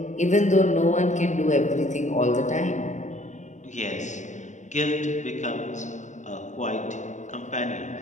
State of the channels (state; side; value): late; right; 0.35 ms